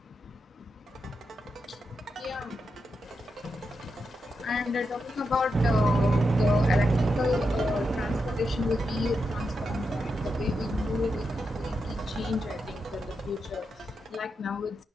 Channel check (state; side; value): normal; both; correlation 0.86